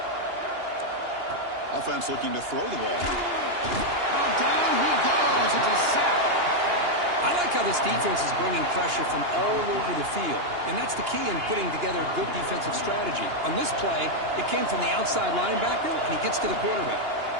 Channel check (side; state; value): left; late; 2.9 ms